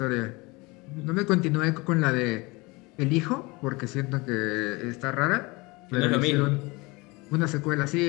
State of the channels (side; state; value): right; quieter; 24.8 dB